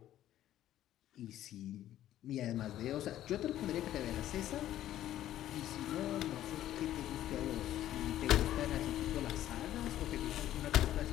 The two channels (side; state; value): right; quieter; 12.7 dB